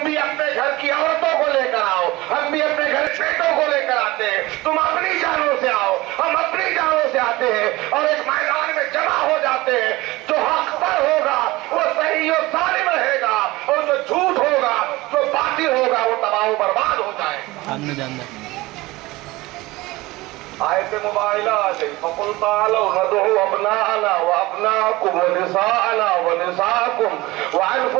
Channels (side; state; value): left; quieter; 20.2 dB